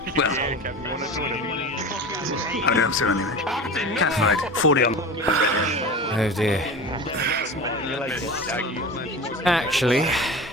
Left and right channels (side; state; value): both; normal; correlation 0.32